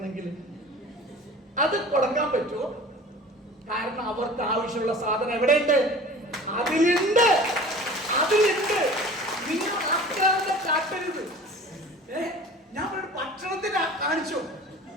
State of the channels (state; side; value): normal; both; correlation 0.42